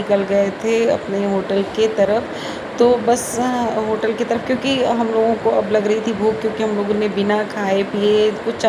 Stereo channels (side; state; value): both; identical; correlation 1.00